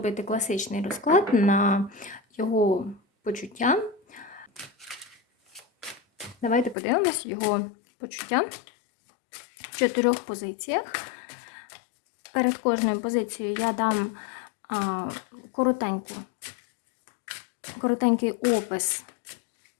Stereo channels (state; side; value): drops out; right; at 6.8 s